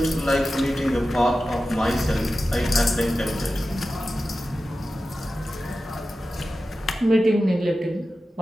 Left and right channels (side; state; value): both; normal; correlation 0.93